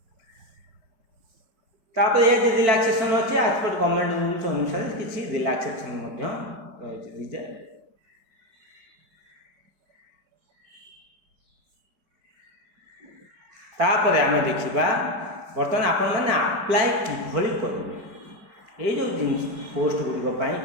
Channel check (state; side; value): late; left; 4.6 ms